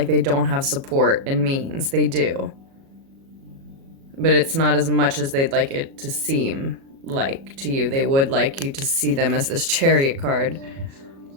they don't have support and means. They do. But it's not as much as they'd like it to seem like to you. They would like you to see them as this Chariot card.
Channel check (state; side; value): late; left; 37 ms